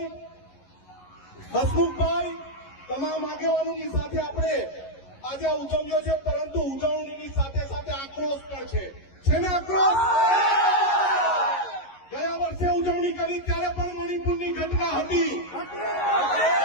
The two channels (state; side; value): late; right; 11 ms